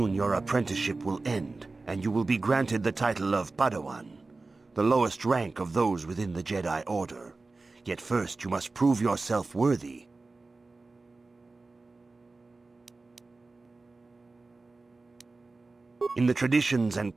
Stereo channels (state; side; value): quieter; left; 3.6 dB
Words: your apprenticeship will end, and you will be granted the title of Padawan, the lowest rank of those within the Jedi Order. Yet first you must prove yourself worthy. In the traditions and